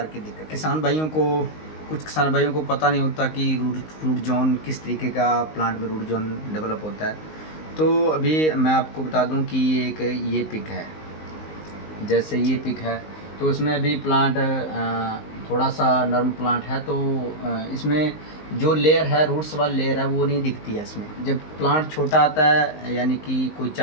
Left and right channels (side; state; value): right; late; 19 ms